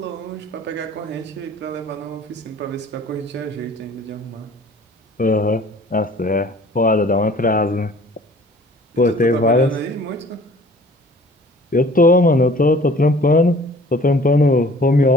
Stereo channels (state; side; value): normal; both; correlation 0.50